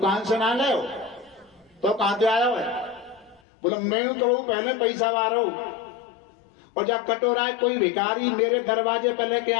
से ना ले हो, तो कहां से आया है? बोलो मैं तो पहले पैसा ला रहा हूं। और जब कटोरा है कोई भिखारी मेरे दरवाजे पर लेके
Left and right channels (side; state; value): right; drops out; at 3.4 s